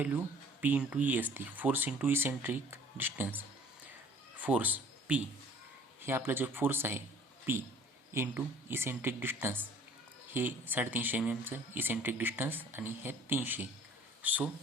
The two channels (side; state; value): both; normal; correlation 0.52